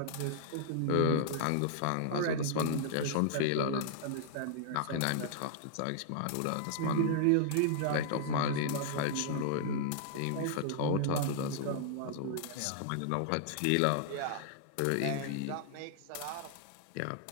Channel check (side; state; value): both; different; correlation -0.01